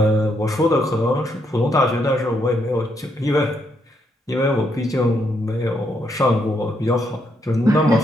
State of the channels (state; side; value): normal; both; correlation 0.76